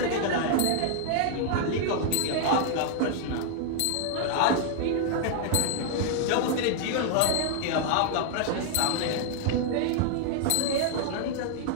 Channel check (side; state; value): both; different; correlation -0.01